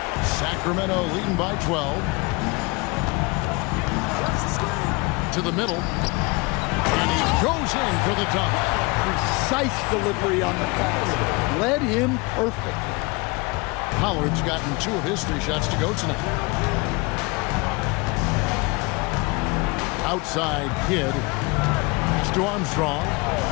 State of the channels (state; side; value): quieter; right; 27.0 dB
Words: Sacramento leading by 12. To the middle. And he goes in for the dunk. Precise delivery on the pass. Led him perfectly. Pollard's gotten 2 of his 3 shots to go tonight. Outside Kidd. Pass to Armstrong.